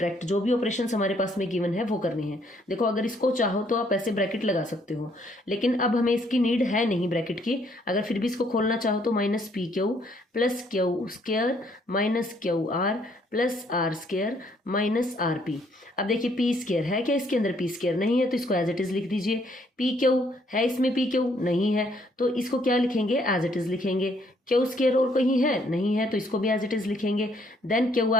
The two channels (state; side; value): normal; both; correlation 0.67